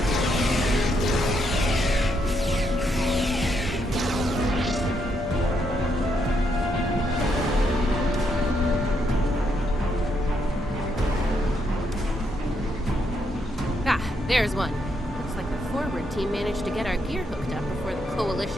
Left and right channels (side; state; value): both; normal; correlation 0.77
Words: There's one. Looks like the forward team managed to get our gear hooked up before the